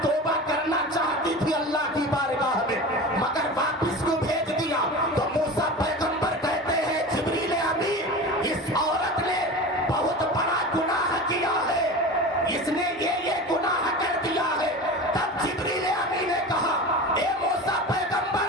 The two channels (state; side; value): normal; both; correlation 0.31